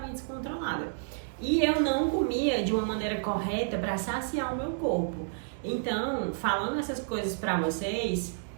descontrolada. E eu não comia de uma maneira correta para saciar o meu corpo. Então, falando essas coisas para vocês,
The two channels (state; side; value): silent; left; digital silence